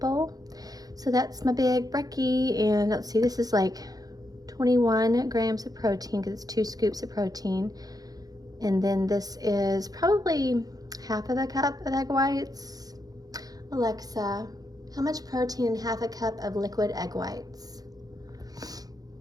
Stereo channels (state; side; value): late; left; 0.18 ms